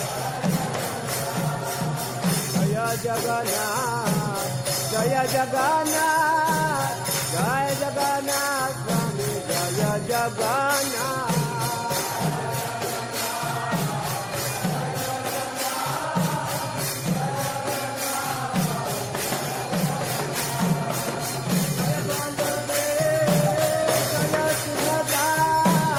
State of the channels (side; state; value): both; identical; correlation 1.00